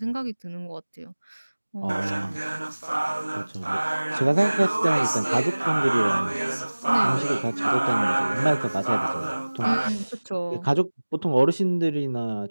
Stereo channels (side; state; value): both; inverted; correlation -1.00